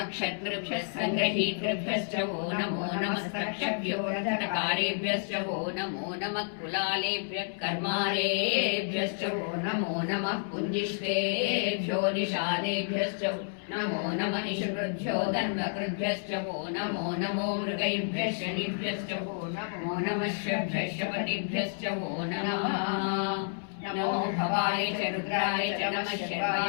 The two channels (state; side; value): silent; right; 56 dB below the other